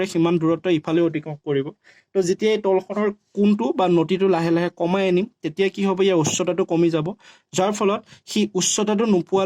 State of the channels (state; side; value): identical; both; correlation 1.00